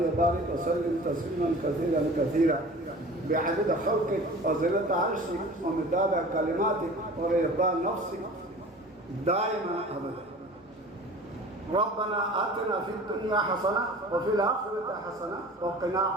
وبارك وسلم تسليما كثيرا كثيرا بعدد خلقك وزنة عرشك ومداد كلماتك ورضا نفسك دائما أبدا ربنا آتنا في الدنيا حسنة وفي الآخرة حسنة وقنا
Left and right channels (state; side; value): normal; both; correlation 0.41